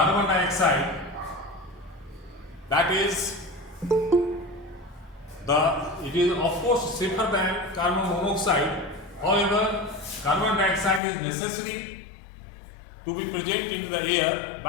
dioxide, that is it is of course safer than carbon monoxide. However, carbon dioxide is necessary to be present in the air,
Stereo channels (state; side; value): drops out; right; at 11.0 s